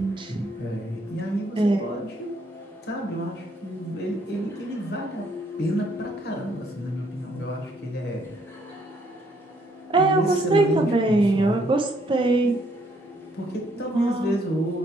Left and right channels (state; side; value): normal; both; correlation 0.69